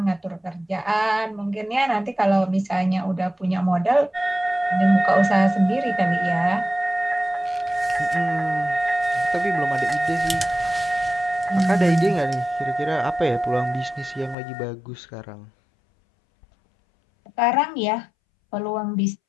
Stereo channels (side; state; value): right; drops out; at 14.4 s